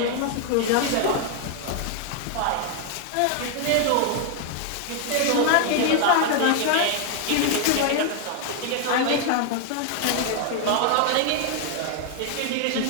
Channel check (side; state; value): both; different; correlation 0.00